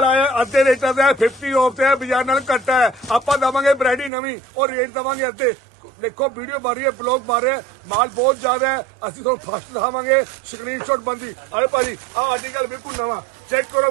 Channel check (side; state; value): left; drops out; at 4.1 s